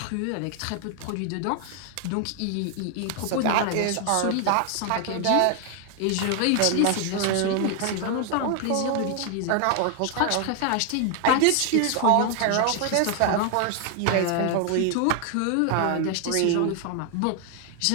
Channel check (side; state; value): both; different; correlation 0.00